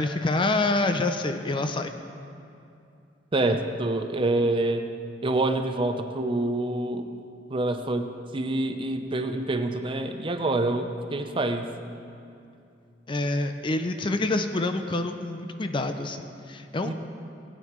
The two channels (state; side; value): normal; both; correlation 0.54